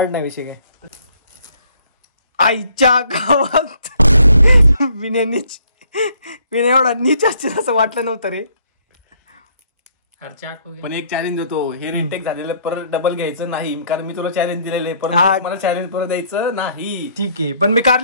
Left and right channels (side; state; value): both; inverted; correlation -0.65